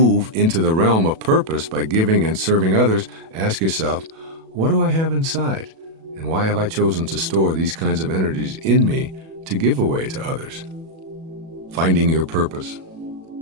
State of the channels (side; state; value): left; late; 37 ms